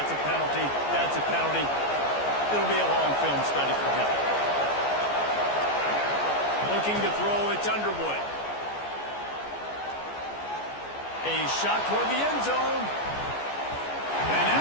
a penalty. That's a penalty. It'll be a long film study for him. Looking to throw, it's Underwood. A shot toward the end zone. And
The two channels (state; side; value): late; right; 14 ms